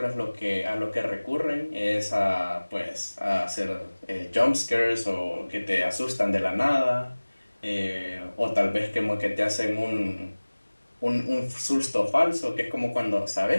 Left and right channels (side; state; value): both; inverted; correlation -1.00